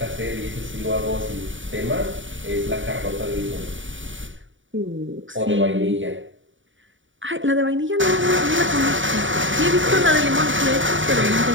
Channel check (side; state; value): left; late; 0.56 ms